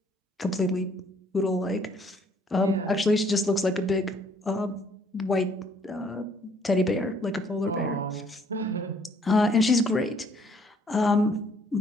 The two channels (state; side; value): normal; both; correlation 0.63